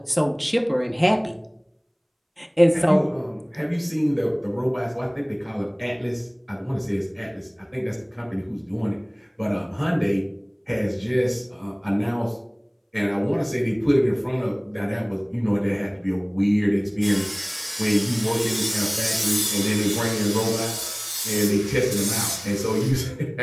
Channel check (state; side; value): identical; both; correlation 1.00